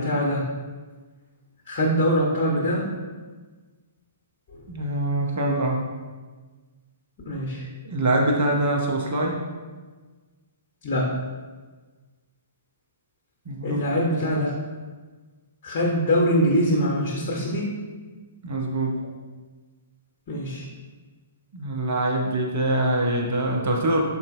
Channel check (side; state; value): both; inverted; correlation -0.40